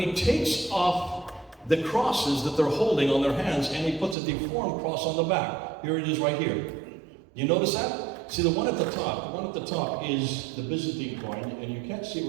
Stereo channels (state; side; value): drops out; left; at 4.2 s